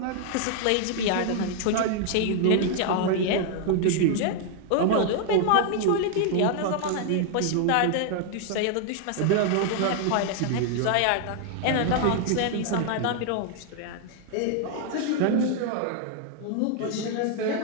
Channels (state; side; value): different; both; correlation 0.00